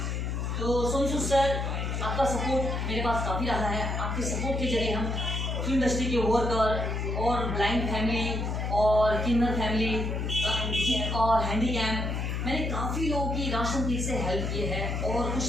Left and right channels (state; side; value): noise; left; hum, 1 dB below the sound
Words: तो सोनू सूद सर, आपका सपोर्ट मेरे पास काफ़ी रहा है। आपके सपोर्ट के जरिए हम फिल्म इंडस्ट्री के वर्कर और ब्लाइंड फैमिली और किन्नर फैमिली और हैंडीकैप, मैंने काफ़ी लोगों की राशन किट से हेल्प की है और